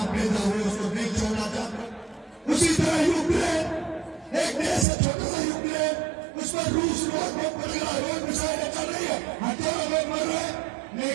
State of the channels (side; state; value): left; drops out; at 4.9 s